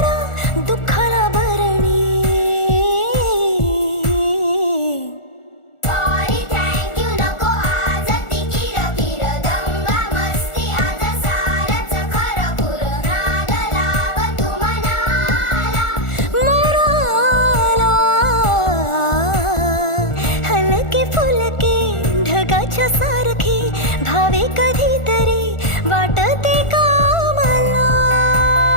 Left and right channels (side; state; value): right; late; 1.4 ms